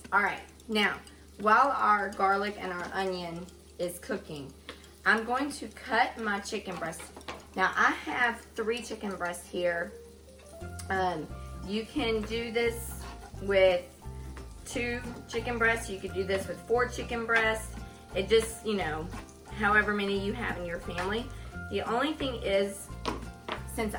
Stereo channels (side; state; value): both; identical; correlation 1.00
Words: All right, now, while our garlic and our onion is cooking, I'm going to cut my chicken breast. Now, I have 3 chicken breasts here. You can do this with 2 chicken breasts. You could do this with 4 chicken breasts. It just, you know, however many you have in your family. The only thing is, since